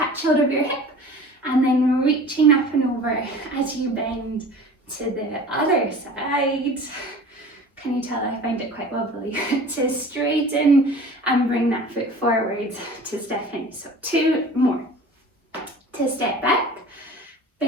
hold of your hip, and then reaching up and over as you bend to the other side. Can you tell I find it quite wobbly? To straighten and bring that foot forward to step in. So 2 more. To step back,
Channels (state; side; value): normal; both; correlation 0.42